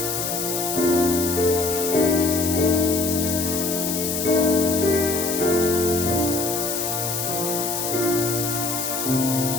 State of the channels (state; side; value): noise; left; hiss, 3 dB below the sound